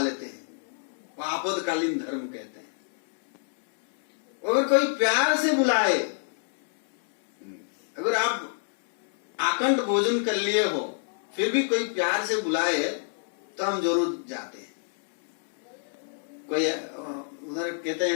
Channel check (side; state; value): right; silent; 60 dB below the other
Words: हैं। वो आपातकालीन धर्म कहते हैं। अगर कोई प्यार से बुलाए, अगर आप आकंठ भोजन कर लिए हो फिर भी कोई प्यार से बुलाए तो हम जरूर जाते हैं। कोई उधर कहते हैं